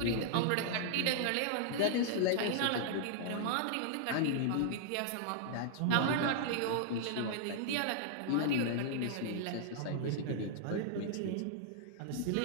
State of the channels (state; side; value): different; both; correlation -0.01